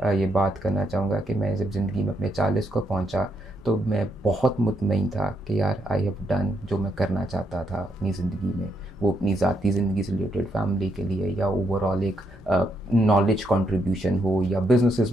ये बात करना चाहूँगा कि मैं जब ज़िंदगी में अपने 40 को पहुँचा तो मैं बहुत मुतमईन था कि यार आई हैव डन जो मैं करना चाहता था अपनी ज़िंदगी में, वो अपनी ज़ाती ज़िंदगी से रिलेटेड, फैमिली के लिए, या ओवरऑल एक नॉलेज कंट्रीब्यूशन हो या बिजनेसेस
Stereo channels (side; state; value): both; normal; correlation 0.78